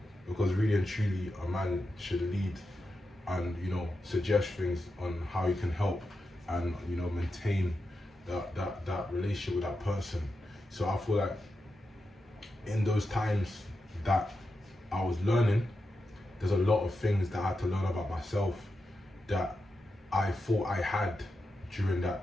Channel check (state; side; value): normal; both; correlation 0.88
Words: Because really and truly, a man should lead and, you know, suggest things on how you can help and, you know, maintain that relationship with that person. So I feel like in those times that I was learning, there's a lot of things that I had to learn about myself that I thought I had during that,